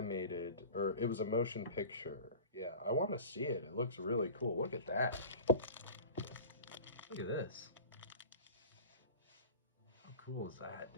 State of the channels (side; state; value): both; inverted; correlation -0.38